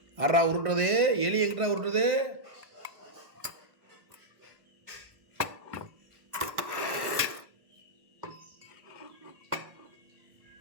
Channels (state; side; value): late; left; 1.5 ms